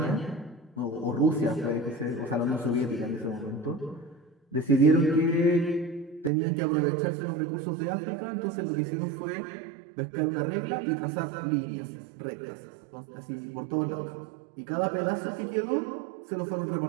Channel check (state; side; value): drops out; left; at 6.3 s